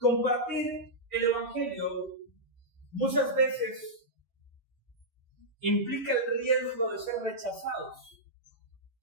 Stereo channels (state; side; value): normal; both; correlation -0.10